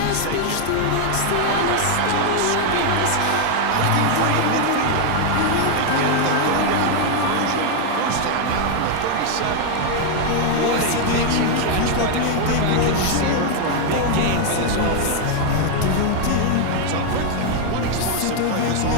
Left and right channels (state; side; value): different; both; correlation 0.00